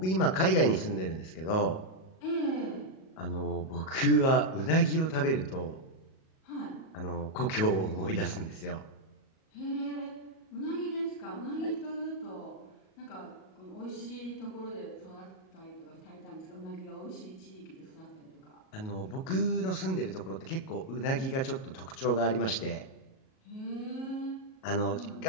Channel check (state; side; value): late; right; 37 ms